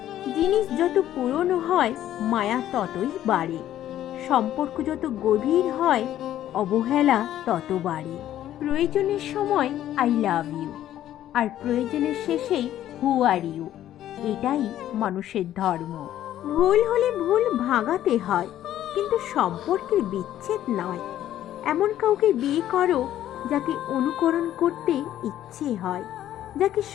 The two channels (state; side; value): quieter; right; 12.2 dB